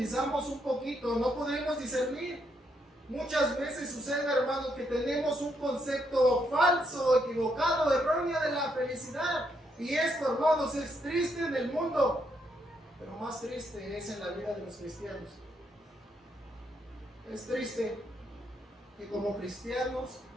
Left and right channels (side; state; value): both; normal; correlation 0.76